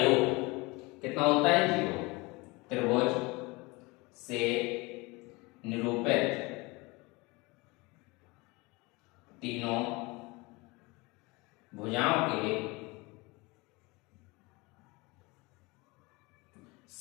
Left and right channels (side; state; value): right; quieter; 24.8 dB